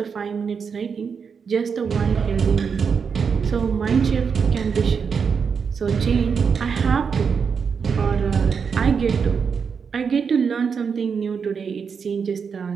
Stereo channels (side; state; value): left; quieter; 6.1 dB